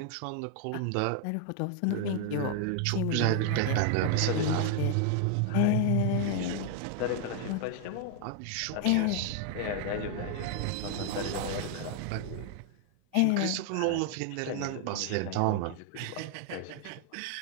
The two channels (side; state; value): both; different; correlation 0.00